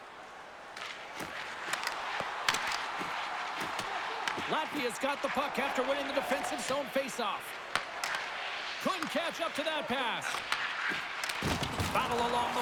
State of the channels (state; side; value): identical; both; correlation 1.00